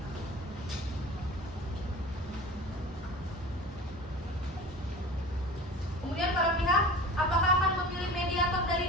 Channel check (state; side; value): normal; both; correlation 0.37